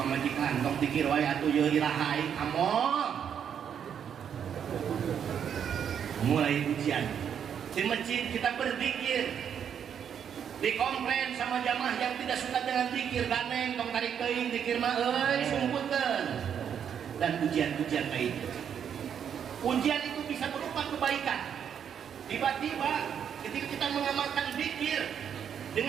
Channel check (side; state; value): left; quieter; 8.3 dB